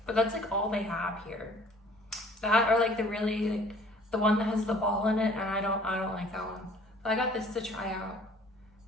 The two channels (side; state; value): both; normal; correlation 0.53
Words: But that's like all they have here. That or like the really like the one that has the ball in it, and I don't like that one. So I got this to try out.